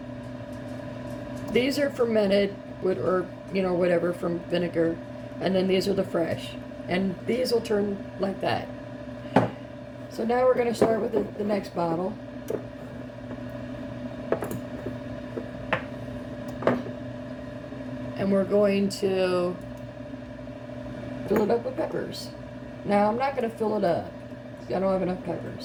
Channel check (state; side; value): identical; both; correlation 1.00